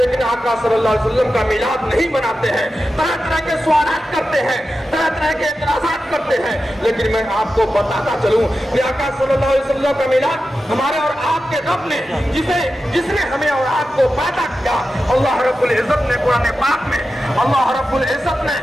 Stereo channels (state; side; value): normal; both; correlation 0.92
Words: आका सल्लल्लाहु अलैहि वसल्लम का मिलाद नहीं मनाते हैं, तरह तरह के सवालात करते हैं, तरह तरह के एतराज़ात करते हैं। लेकिन मैं आपको बताता चलूं कि आका सल्लल्लाहु अलैहि वसल्लम का मिलाद हमारे और आपके रब ने, जिसने हमें और आपको पैदा किया, अल्लाह रब्बुल इज्जत ने कुरान पाक में, अल्लाह रब्बुल इज्जत ने